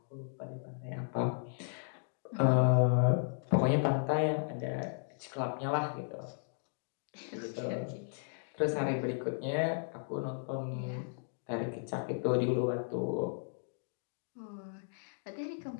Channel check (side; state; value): right; silent; digital silence